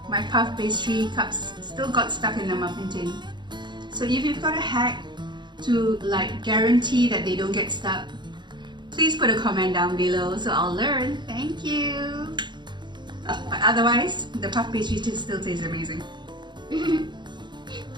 my puff pastry cups still got stuck in the muffin tin. So if you've got a hack to like guarantee that they don't get stuck, please put a comment down below so I'll learn. Thank you. But otherwise, the puff pastry still tastes amazing.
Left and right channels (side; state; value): left; late; 0.22 ms